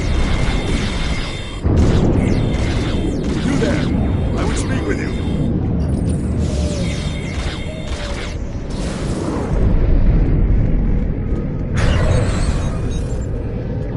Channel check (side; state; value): both; identical; correlation 1.00